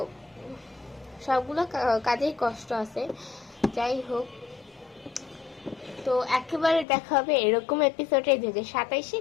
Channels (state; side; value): drops out; right; at 6.9 s